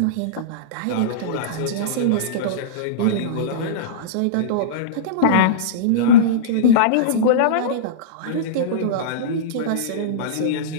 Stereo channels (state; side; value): different; both; correlation -0.05